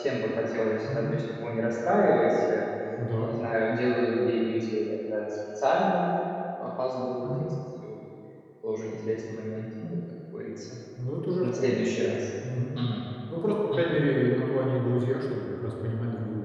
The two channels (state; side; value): identical; both; correlation 1.00